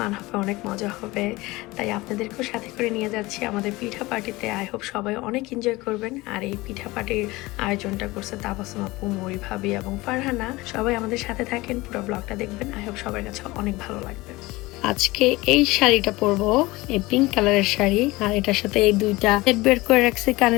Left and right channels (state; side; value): quieter; right; 21.0 dB